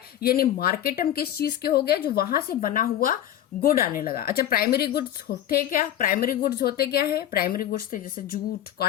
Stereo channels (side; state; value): right; quieter; 11.7 dB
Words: यानी मार्केट हम किस चीज के हो गए, जो वहां से बना हुआ गुड आने लगा। अच्छा, प्राइमरी गुड्स होते क्या? प्राइमरी गुड्स होते क्या है? प्राइमरी गुड्स थे जैसे जूट,